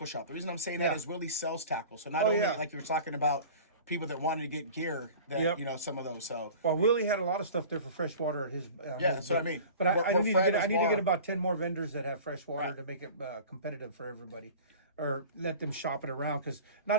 shop. The reason I'm saying that is Willie sells tackle. So not only like you were talking about people that wanted to get gear, that you know, some of those. So Willie had a lot of stuff there for freshwater at his. That's what I mean. But I need to get about 10 more vendors that have freshwater to make it competitive for everybody, or let them shop it around, because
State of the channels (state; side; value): inverted; both; correlation -0.40